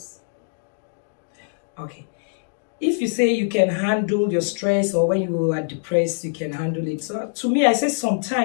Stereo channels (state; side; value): silent; right; digital silence